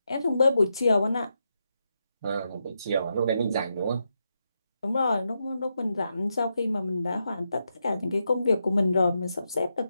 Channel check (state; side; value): inverted; both; correlation -0.84